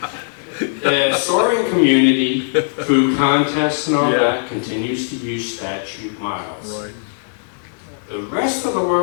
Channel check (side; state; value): right; silent; digital silence